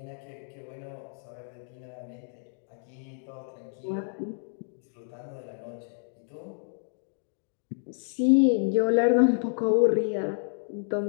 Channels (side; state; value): right; silent; digital silence